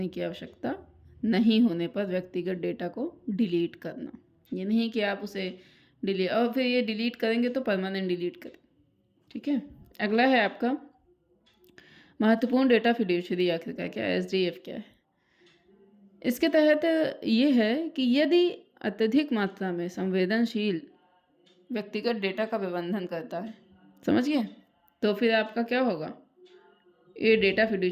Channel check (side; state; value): both; identical; correlation 1.00